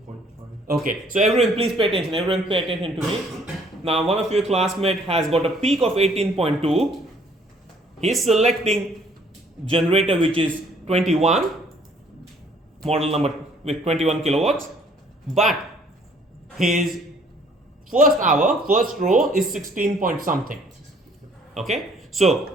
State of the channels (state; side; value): normal; both; correlation 0.60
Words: Okay, so everyone please pay attention. Everyone pay attention to me. Now one of your classmates has got a peak of 18.2. He's selecting generator which is 21, model number with 21 kilowatts, but his first hour, first row is 16 point something. Okay,